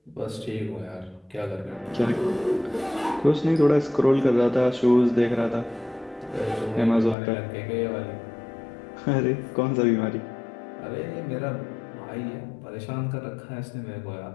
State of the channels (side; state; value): right; drops out; at 7.2 s